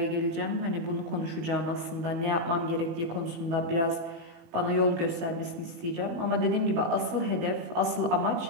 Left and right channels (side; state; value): left; late; 18 ms